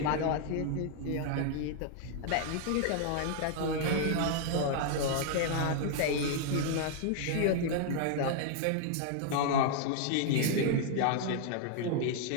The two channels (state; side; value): different; both; correlation 0.00